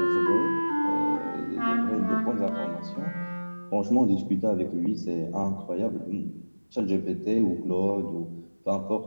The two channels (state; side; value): inverted; both; correlation -1.00